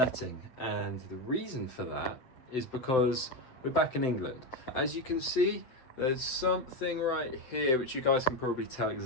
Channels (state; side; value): late; right; 7.9 ms